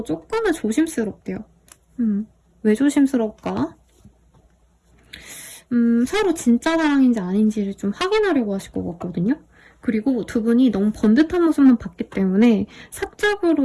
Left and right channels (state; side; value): identical; both; correlation 1.00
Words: 조금은 조심스럽대요. 왜 조심스러울까? 서로 진짜 사랑인지 아닌지를 좀 확인하려고 하실 것 같거든요. 그리고 두 분이 너무 번듯한 모습만 봤기 때문에 사적으로